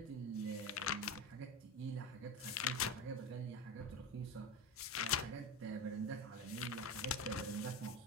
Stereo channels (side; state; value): both; normal; correlation 0.22